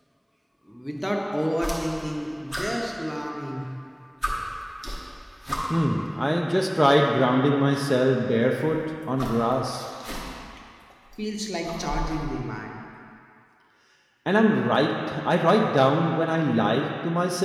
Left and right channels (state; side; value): identical; both; correlation 1.00